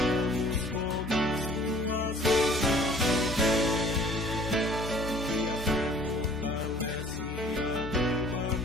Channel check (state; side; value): normal; both; correlation 0.53